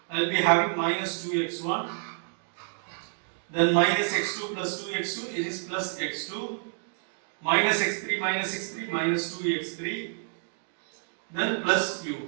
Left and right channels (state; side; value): silent; left; digital silence